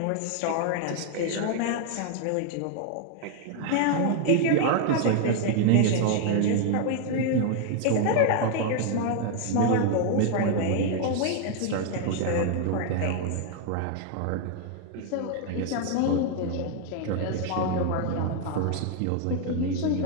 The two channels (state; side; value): different; both; correlation 0.00